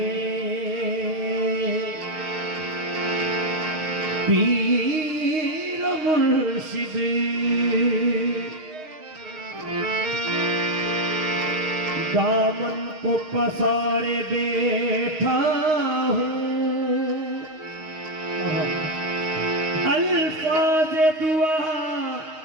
पीर मुर्शिद, दामन को पसारे बैठा हूँ, अल्फाज दुआ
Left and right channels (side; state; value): left; late; 6.4 ms